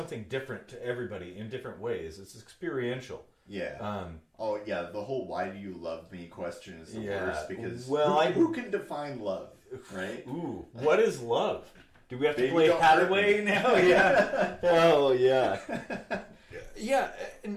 different to everybody in different ways. It's experiential. Yeah. The whole "why do you love me" question is the worst, because who can define love, right? Ooh, what is love? Do we have to play Hathaway now? Yeah. Oh yeah. Yeah,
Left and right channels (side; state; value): both; identical; correlation 1.00